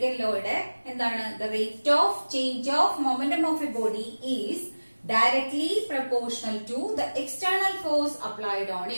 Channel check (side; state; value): both; inverted; correlation -1.00